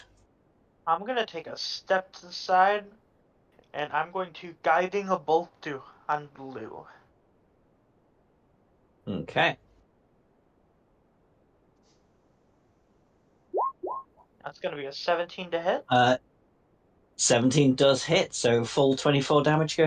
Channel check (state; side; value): identical; both; correlation 1.00